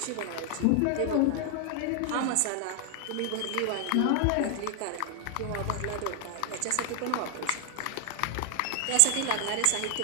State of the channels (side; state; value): both; different; correlation 0.00